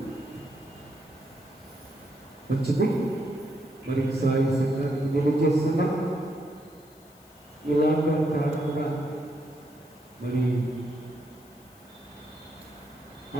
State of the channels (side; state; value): left; noise; hiss, 26 dB below the sound